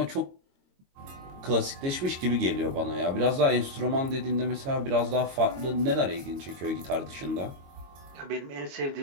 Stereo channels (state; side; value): late; left; 22 ms